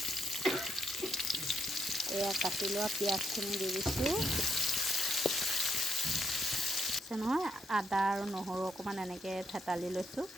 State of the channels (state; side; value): normal; both; correlation 0.76